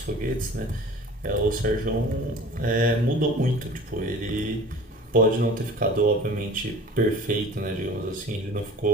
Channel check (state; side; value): normal; both; correlation 0.43